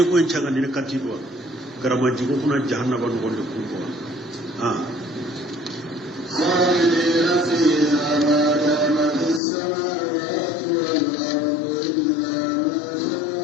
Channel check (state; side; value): drops out; right; at 9.4 s